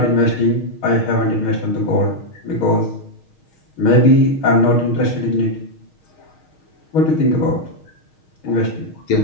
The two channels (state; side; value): late; right; 6.4 ms